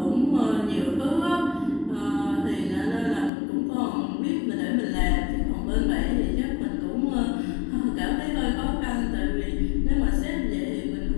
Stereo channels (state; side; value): drops out; right; at 3.3 s